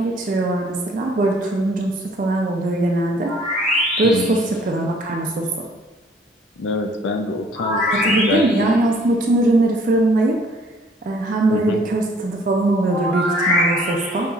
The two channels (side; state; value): both; normal; correlation 0.58